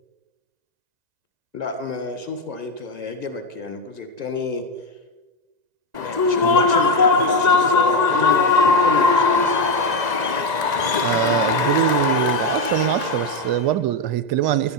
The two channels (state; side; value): late; left; 1.9 ms